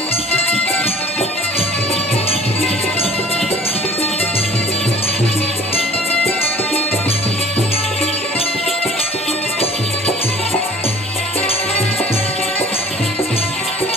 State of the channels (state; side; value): normal; both; correlation 0.49